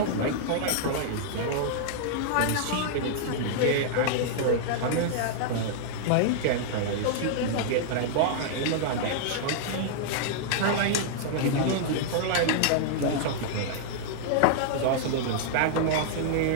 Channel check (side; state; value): both; different; correlation -0.01